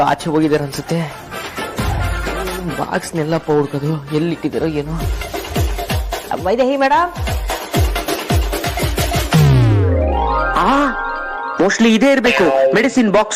ಆಚೆ ಹೋಗಿದಾರೆ ಅನ್ಸುತ್ತೆ. ಬಾಕ್ಸ್ನೆಲ್ಲಪ್ಪ ಹುಡ್ಕೋದು, ಎಲ್ಲಿಟ್ಟಿದಾರೋ ಏನೋ. ವೈದೇಹಿ ಮೇಡಮ್, ಮೋಸ್ಟ್ಲಿ ಇದೇ ಇರ್ಬೇಕು, ಮೆಡಿಸಿನ್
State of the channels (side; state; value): both; identical; correlation 1.00